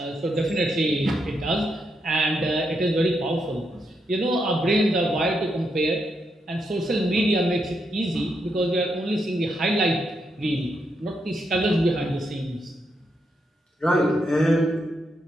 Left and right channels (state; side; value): normal; both; correlation 0.81